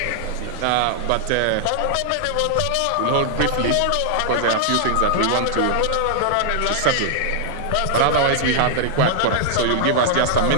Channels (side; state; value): both; different; correlation -0.01